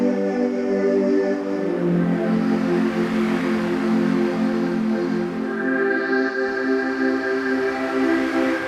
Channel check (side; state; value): both; identical; correlation 1.00